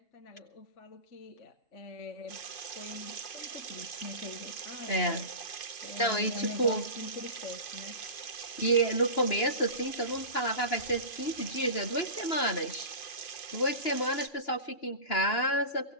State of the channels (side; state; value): right; late; 2.9 ms